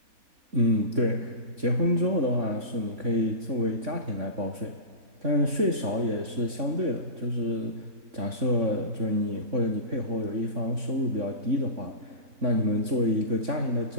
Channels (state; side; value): late; left; 3.5 ms